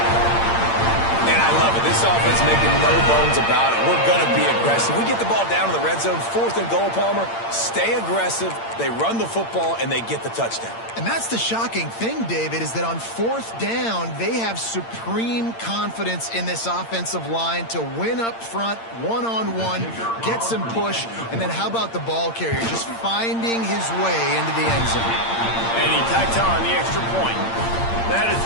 defense making no bones about it. We're going to be aggressive. We get the ball down in the red zone, 4th and goal, Palmer. Stay aggressive. They run the football, and they get the touchdown. And that's the shocking thing, David, is that on 4th down, they have supreme confidence in this offensive line to win up front, one-on-one, get some push, and then how about the ball carrier just finding his way into the end zone? And he tacked on the extra point. That is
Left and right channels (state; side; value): late; right; 8.8 ms